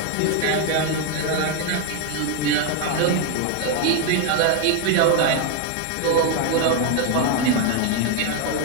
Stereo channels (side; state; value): both; different; correlation 0.01